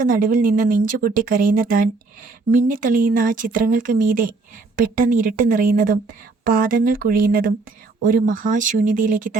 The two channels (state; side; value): quieter; left; 3.8 dB